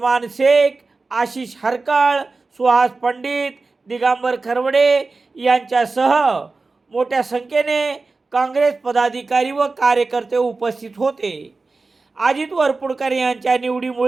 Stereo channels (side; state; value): left; quieter; 3.8 dB